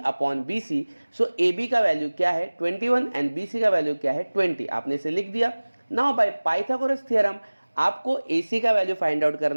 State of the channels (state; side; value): inverted; both; correlation -1.00